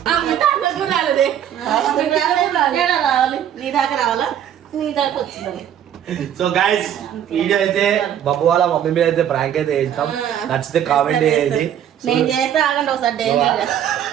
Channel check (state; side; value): quieter; left; 10.0 dB